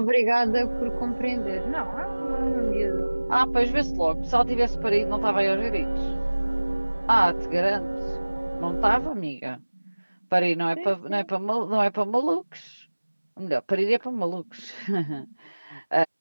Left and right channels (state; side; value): inverted; both; correlation -1.00